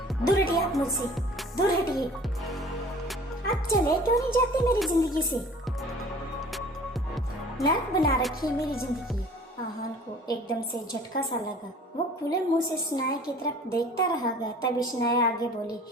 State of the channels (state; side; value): normal; both; correlation 0.48